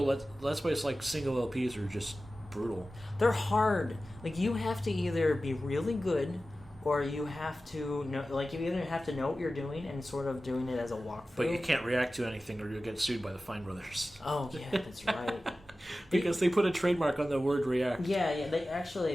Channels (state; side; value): normal; both; correlation 0.95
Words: why it's single LPs are just brutal. They're hard. You have to either be really good, or you have to know. You either have to know what you're doing and sort of doing it as a walkthrough. But you can't react to anything, or you'll get sued by the Fine Brothers. Oh yeah, that's right. Because they put a trademark on the word react. Yeah.